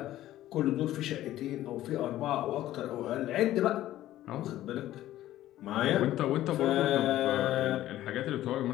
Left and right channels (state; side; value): quieter; right; 14.0 dB